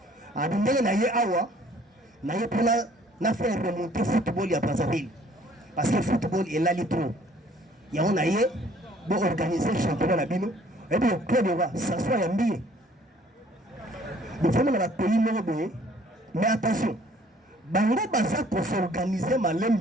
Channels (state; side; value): normal; both; correlation 0.58